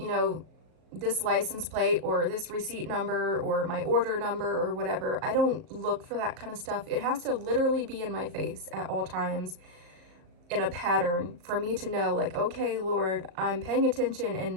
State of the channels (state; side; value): late; left; 38 ms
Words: this license plate or this receipt number or my order number or whatever. I don't look for that kind of stuff. It has to literally be in my face at all times in a pattern for me to know, like, okay, Lord, I'm paying attention,